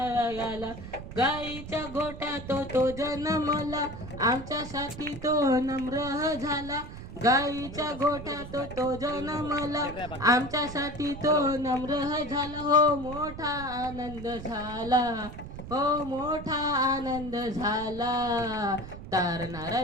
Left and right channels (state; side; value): noise; right; rumble, 11 dB below the sound